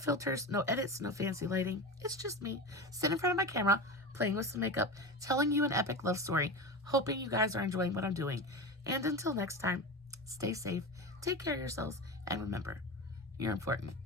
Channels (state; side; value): normal; both; correlation 0.25